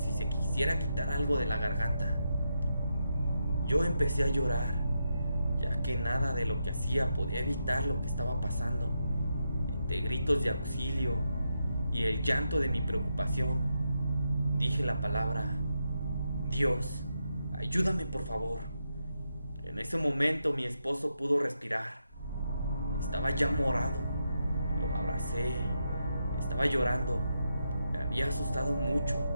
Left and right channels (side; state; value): both; inverted; correlation -0.84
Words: se quisiera quitar algo de la garganta. Yo empecé a llorar, ya que nada de lo que hacía podía evitar lo que estaba pasando. Entre gritos de auxilio y el llanto de mi preocupación, dije la palabra: Dios, ayúdame por favor. En ese momento mi esposo pudo respirar. Estaba ya morado. Lo abracé. Estaba llorando. Me había asustado mucho.